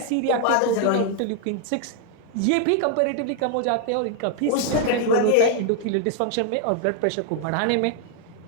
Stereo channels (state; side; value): different; both; correlation 0.00